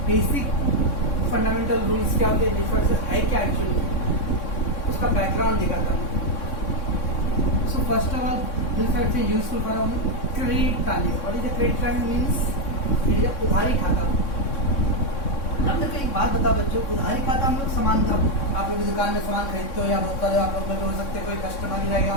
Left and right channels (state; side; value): late; right; 3.6 ms